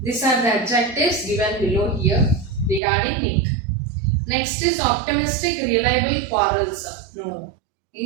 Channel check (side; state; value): left; drops out; at 2.8 s